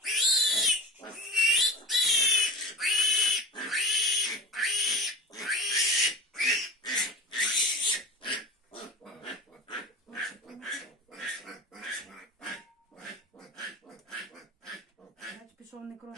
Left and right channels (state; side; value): normal; both; correlation 0.32